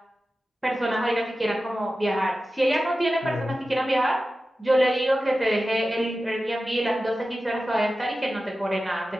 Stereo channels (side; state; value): both; normal; correlation 0.94